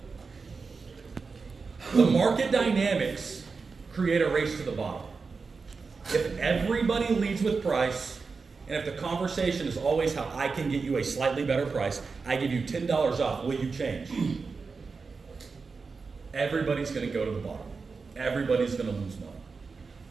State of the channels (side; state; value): left; quieter; 4.7 dB